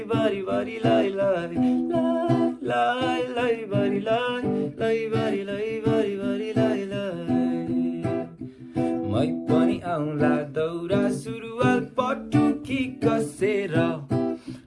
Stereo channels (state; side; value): identical; both; correlation 1.00